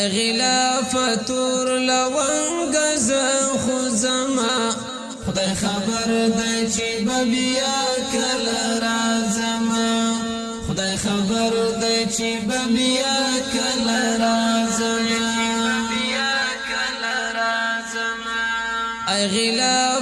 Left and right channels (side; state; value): both; identical; correlation 1.00